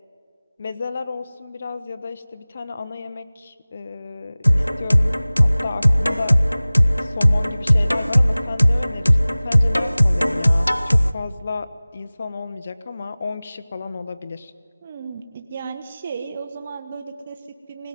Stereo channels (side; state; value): both; inverted; correlation -0.99